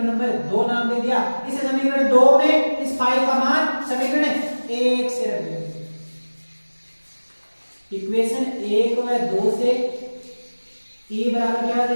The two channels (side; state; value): both; inverted; correlation -1.00